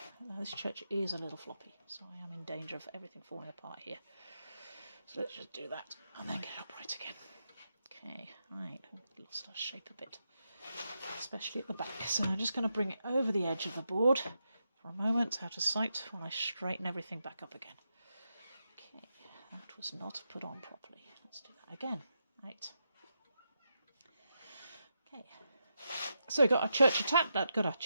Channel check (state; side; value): inverted; both; correlation -0.85